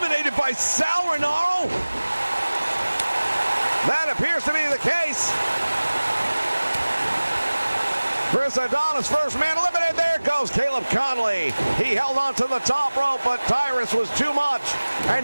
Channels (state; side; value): inverted; both; correlation -1.00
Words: by Sal Rinauro. That appears to be the case. Chris Adonis, first man eliminated. There goes Caleb Conley. He held on to the top rope, but Tyrus was too much. And